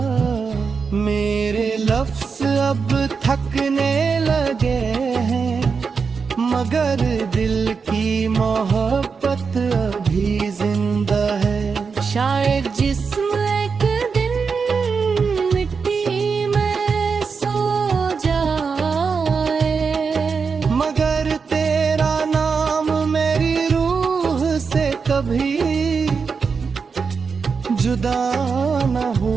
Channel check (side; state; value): left; quieter; 5.4 dB